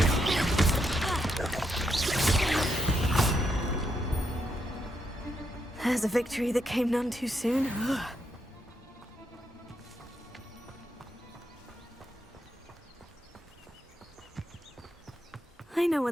There's a victory that came none too soon. I know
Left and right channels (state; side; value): normal; both; correlation 0.80